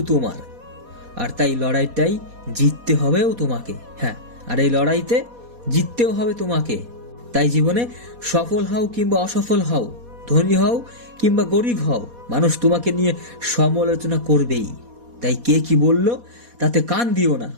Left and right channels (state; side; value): late; left; 4.2 ms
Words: তোমার, আর তাই লড়াইটাই জিততে হবেও তোমাকে। হ্যাঁ, আর এই লড়াইতে জিততেও হবে তোমাকে। তাই জীবনে সফল হও কিংবা অসফল হও, ধনী হও কিংবা গরিব হও, মানুষ তোমাকে নিয়ে সমালোচনা করবেই। তাই কে কি বলল তাতে কান দিও না।